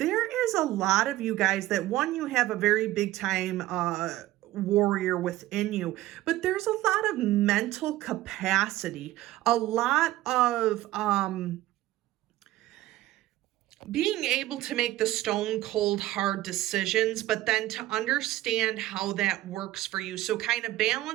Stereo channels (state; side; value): quieter; left; 15.8 dB